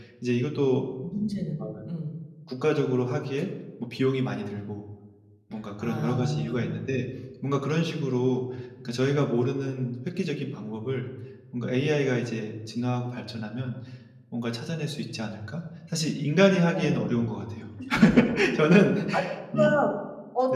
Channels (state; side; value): identical; both; correlation 1.00